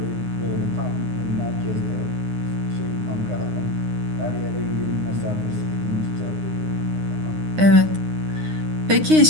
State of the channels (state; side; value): late; left; 9.7 ms